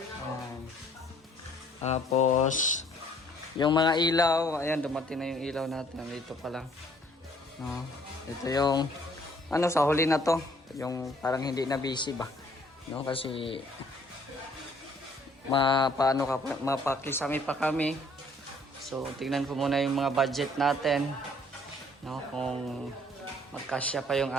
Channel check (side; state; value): both; normal; correlation 0.60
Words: Tapos, yung mga ilaw. Ayan, dumating na yung ilaw natin. Dito pa lang. No? Ito yung, ano, sa huli na to. Yung parang hindi na busy ba? No? Kasi, mapakisami pa kami. So, tingnan ko muna yung mga budget natin. No? Kung magkasya pa yung